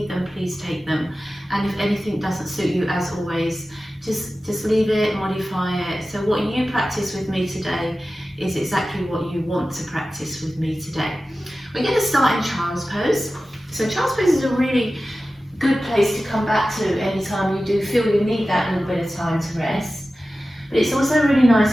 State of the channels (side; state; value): both; normal; correlation 0.95